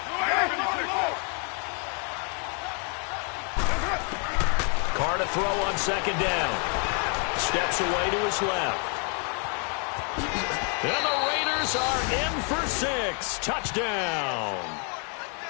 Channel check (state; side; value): quieter; right; 39.5 dB